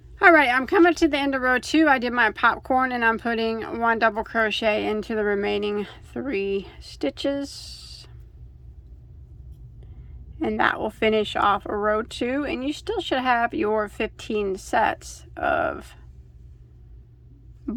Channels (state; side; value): identical; both; correlation 1.00